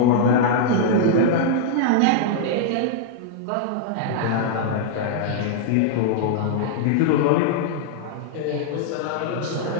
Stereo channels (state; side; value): different; both; correlation -0.01